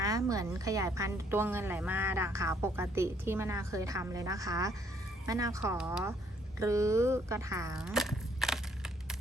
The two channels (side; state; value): both; normal; correlation 0.66